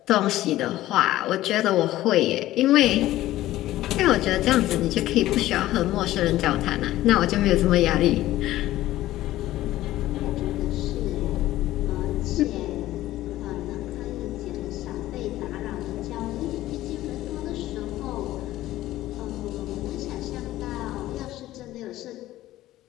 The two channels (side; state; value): right; quieter; 15.2 dB